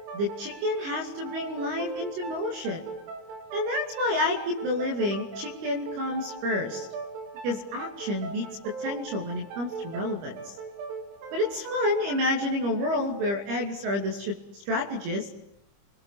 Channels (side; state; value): left; late; 25 ms